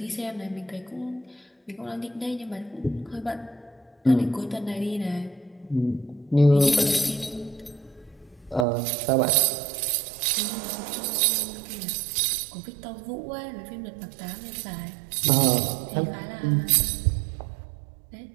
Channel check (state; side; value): drops out; left; at 8.7 s